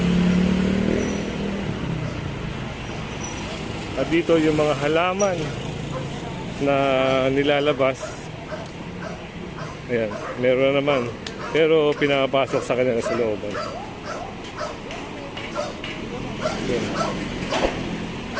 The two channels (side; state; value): both; identical; correlation 1.00